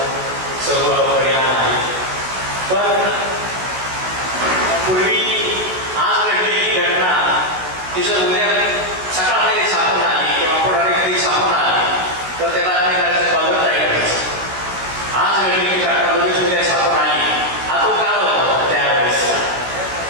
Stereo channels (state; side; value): late; left; 16 ms